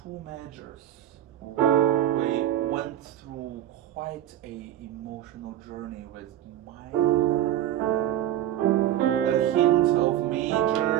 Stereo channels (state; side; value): quieter; left; 12.0 dB